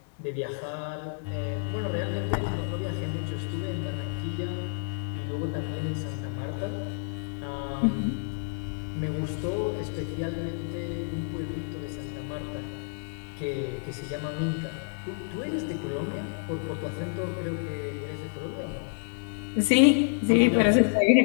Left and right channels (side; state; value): right; silent; digital silence